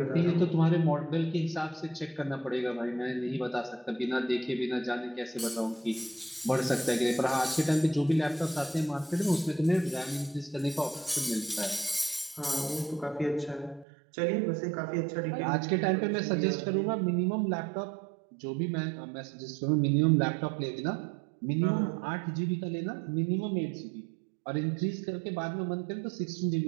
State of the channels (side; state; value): left; drops out; at 13.9 s